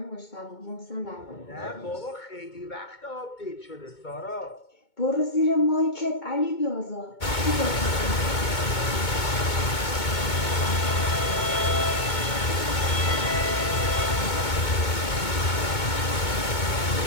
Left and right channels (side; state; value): right; late; 2.2 ms